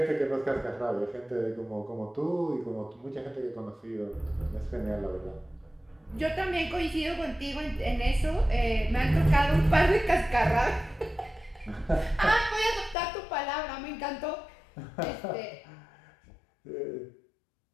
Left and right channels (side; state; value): right; drops out; at 13.0 s